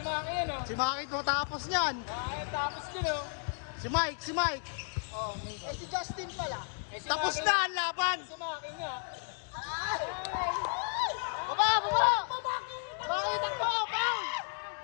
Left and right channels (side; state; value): right; silent; 56 dB below the other